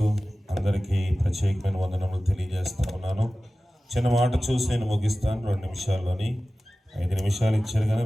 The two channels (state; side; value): normal; both; correlation 0.96